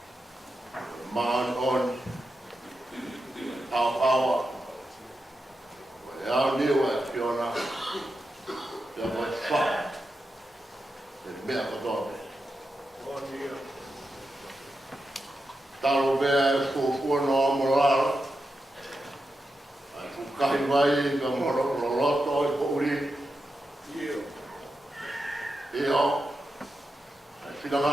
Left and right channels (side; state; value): both; normal; correlation 0.88